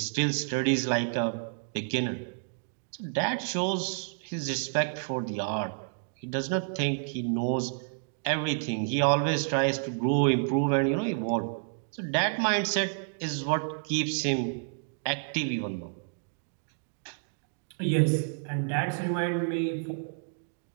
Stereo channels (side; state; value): left; silent; digital silence